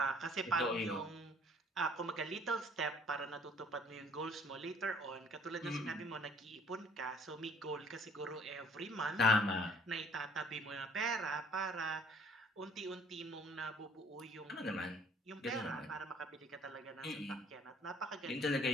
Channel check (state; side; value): normal; both; correlation 0.59